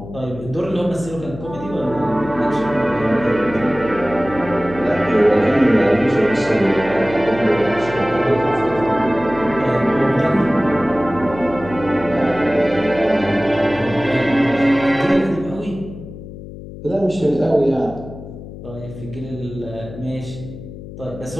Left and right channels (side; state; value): left; noise; hum, 13 dB below the sound